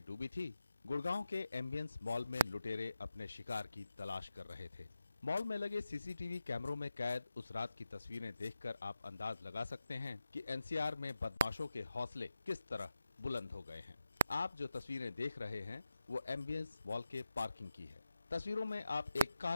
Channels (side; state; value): both; inverted; correlation -0.88